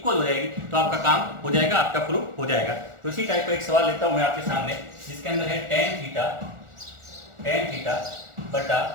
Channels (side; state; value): left; late; 1.4 ms